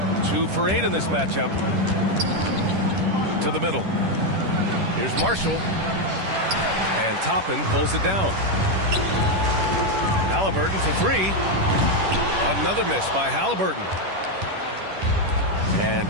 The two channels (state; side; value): late; left; 10 ms